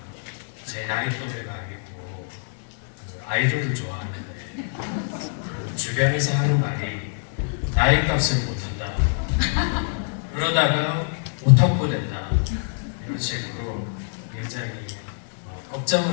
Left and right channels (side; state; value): right; silent; 62 dB below the other